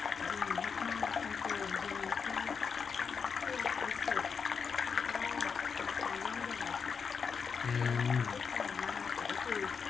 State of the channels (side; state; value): right; quieter; 5.9 dB